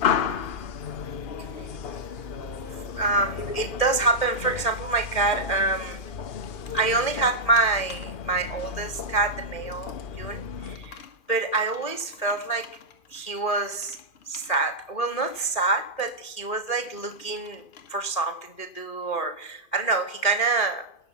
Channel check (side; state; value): right; late; 2.4 ms